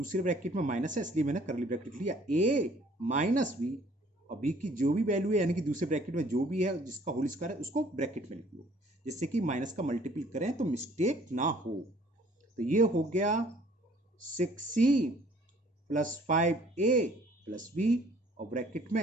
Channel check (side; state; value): both; normal; correlation 0.57